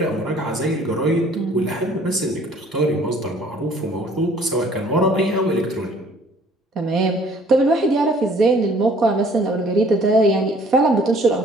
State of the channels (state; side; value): normal; both; correlation 0.56